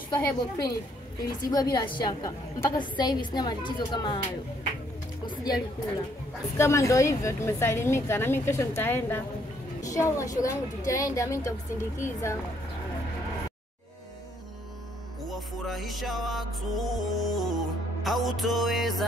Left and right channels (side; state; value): both; normal; correlation 0.68